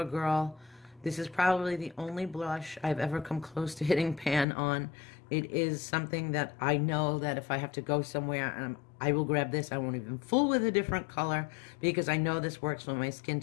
This is probably the only blush I've ever come close to hitting pan on. It is something that I know that if I have to go somewhere, and I will grab this. I won't even fool with a different color because I know this works with my skin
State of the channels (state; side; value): drops out; right; at 4.5 s